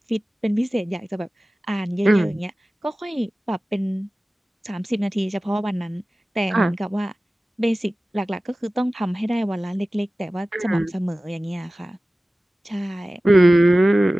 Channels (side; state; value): both; normal; correlation 0.96